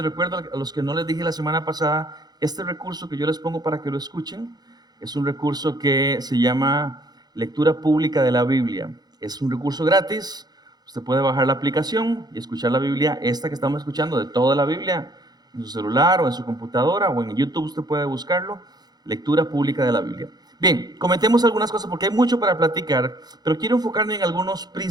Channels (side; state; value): left; late; 0.19 ms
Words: recuerdo a los que no les dije la semana pasada, este recurso que yo les pongo para que lo escuchen es un recurso que se llama Lectura Pública de la Biblia. Es un recurso gratis, usted puede bajar la aplicación y escuchar la Biblia, esta que estamos escuchando, de toda la Biblia, en su celular o en su computadora o en YouTube usted puede buscarlo, Lectura Pública de la Biblia. Bien, comentemos algunas cosas porque hay mucho para platicar, pero quiero enfocarme en algunos